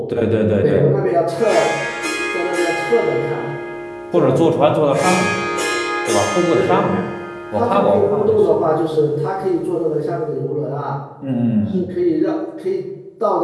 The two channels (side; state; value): both; identical; correlation 1.00